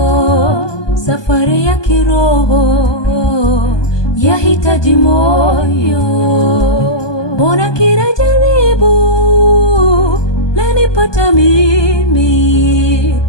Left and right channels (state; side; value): late; right; 1.2 ms